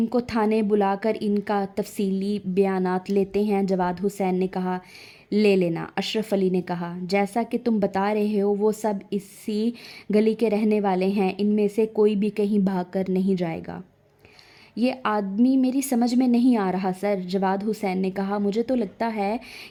کو تھانے بلا کر ان کا تفصیلی بیانات لیتے ہیں، جواد حسین نے کہا۔ لے لینا، اشرف علی نے کہا۔ جیسا کہ تم بتا رہے ہو وہ سب اسی گلی کے رہنے والے ہیں، ان میں سے کوئی بھی کہیں بھاگ کر نہیں جائے گا۔ یہ آدمی میری سمجھ میں نہیں آ رہا سر، جواد حسین نے کہا۔ مجھے تو لگتا ہے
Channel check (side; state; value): both; identical; correlation 1.00